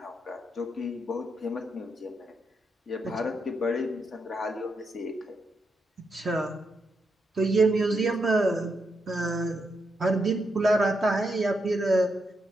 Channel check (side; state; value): both; normal; correlation 0.82